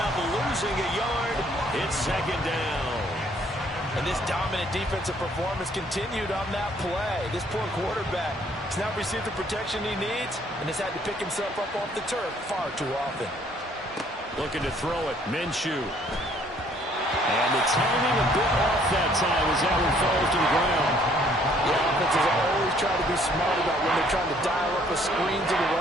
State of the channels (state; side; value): normal; both; correlation 0.62